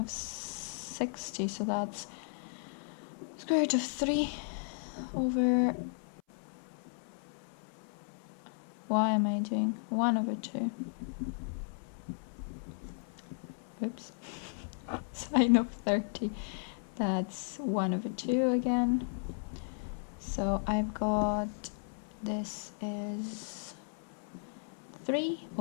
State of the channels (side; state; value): right; silent; 54 dB below the other